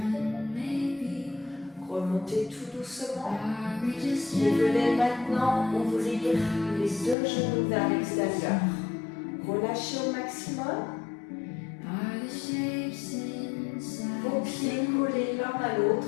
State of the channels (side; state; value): right; drops out; at 7.2 s